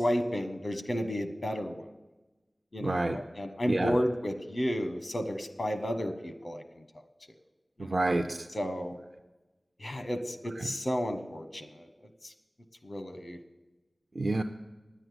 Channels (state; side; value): normal; both; correlation 0.96